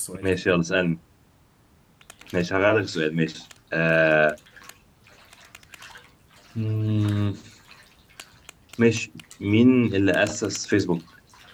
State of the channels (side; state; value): both; identical; correlation 1.00